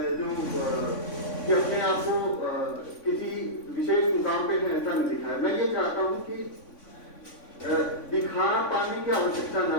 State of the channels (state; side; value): late; right; 3.5 ms